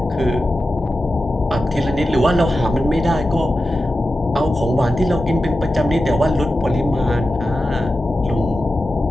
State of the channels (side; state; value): both; normal; correlation 0.92